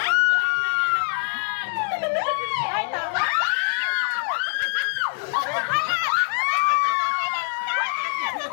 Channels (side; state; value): right; silent; 61 dB below the other